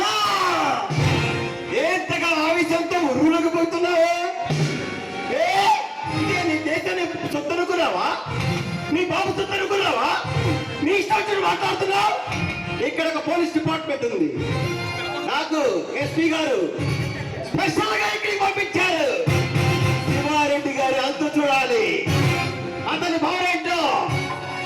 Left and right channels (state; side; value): identical; both; correlation 1.00